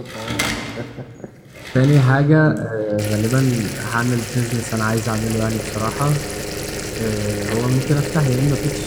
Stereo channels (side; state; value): both; identical; correlation 1.00